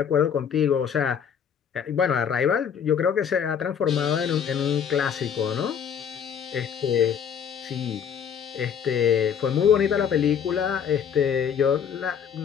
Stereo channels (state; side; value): quieter; right; 7.8 dB